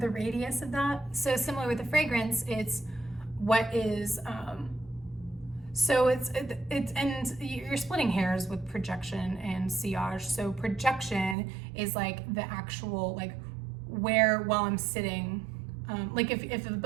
radius of that? So similar with the fragrance, it's what is, so it's and you're splitting hairs with projection and sillage. So projection is like the actual, like where, while I'm sitting, like if the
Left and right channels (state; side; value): drops out; left; at 11.4 s